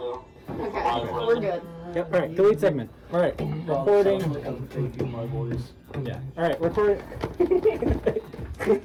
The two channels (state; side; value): identical; both; correlation 1.00